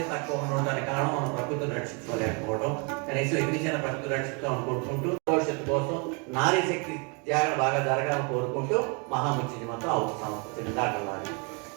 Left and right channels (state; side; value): quieter; left; 34.0 dB